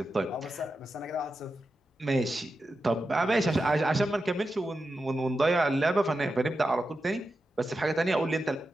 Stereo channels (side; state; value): both; normal; correlation 0.90